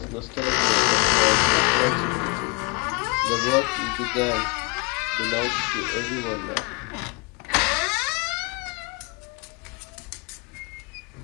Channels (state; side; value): quieter; right; 30.5 dB